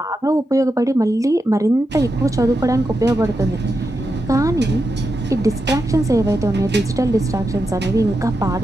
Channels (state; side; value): normal; both; correlation 0.87